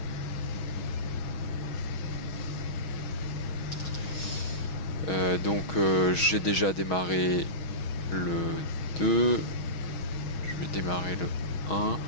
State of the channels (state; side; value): late; right; 6.3 ms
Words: Donc j'ai déjà démarré le 2. Je vais démarrer le 1.